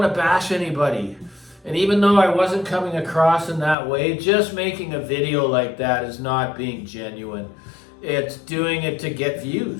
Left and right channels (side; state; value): right; drops out; at 3.8 s